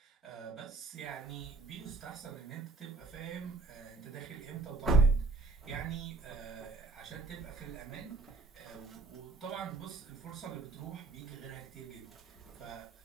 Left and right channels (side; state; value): left; quieter; 3.9 dB